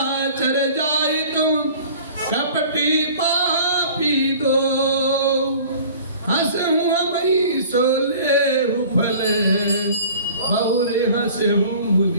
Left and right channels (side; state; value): both; inverted; correlation -0.46